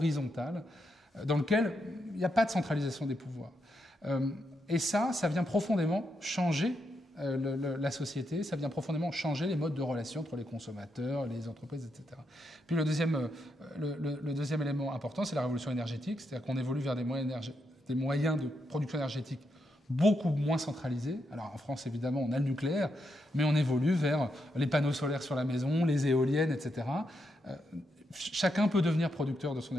dans lequel il n'y a pas de centralisation des pouvoirs. Et ça vient profondément changer la société, ça vient profondément changer les modes de relation entre les consommateurs, les entreprises, etc. Puis le deuxième élément important, c'est la révolution énergétique, c'est-à-dire qu'on évolue vers des moyens de production énergétique beaucoup moins centralisés. Alors en France, évidemment, on a le nucléaire, mais on évolue vers les panneaux solaires sur la maison, les éoliennes, etc. Chacun peut devenir producteur de son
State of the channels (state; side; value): normal; both; correlation 0.82